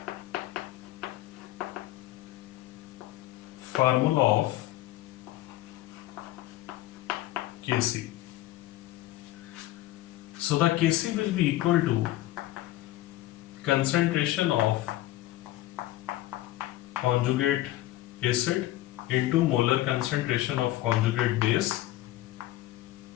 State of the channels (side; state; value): right; quieter; 15.6 dB